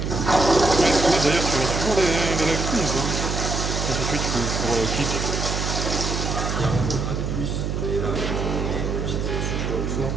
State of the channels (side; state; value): right; noise; hum, 2 dB below the sound